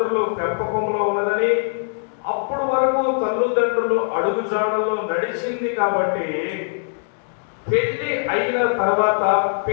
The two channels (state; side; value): silent; right; digital silence